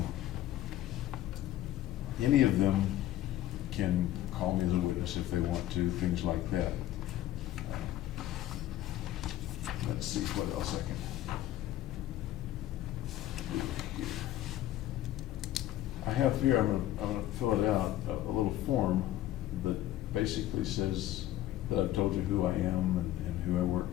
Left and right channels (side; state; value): right; quieter; 13.7 dB